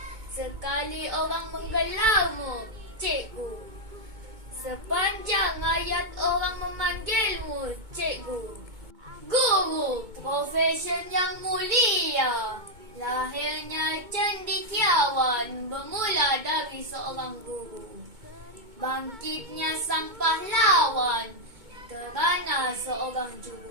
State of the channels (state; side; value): late; left; 2.2 ms